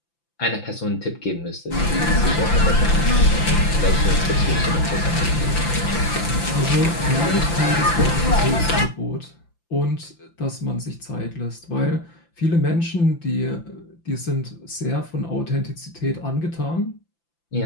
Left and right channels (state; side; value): late; right; 5.9 ms